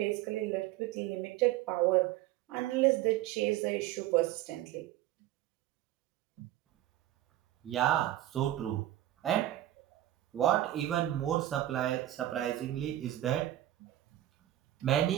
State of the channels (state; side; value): quieter; left; 13.9 dB